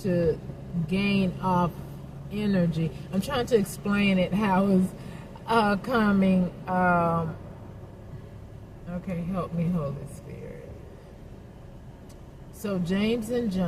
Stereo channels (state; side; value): identical; both; correlation 1.00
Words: gain off energy. I'm trying to explain it how it's coming. Okay, help me, Holy Spirit. So James and